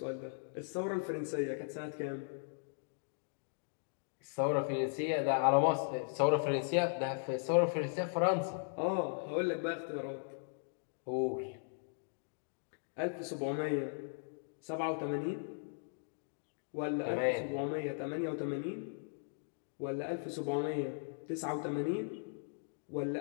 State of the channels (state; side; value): silent; right; digital silence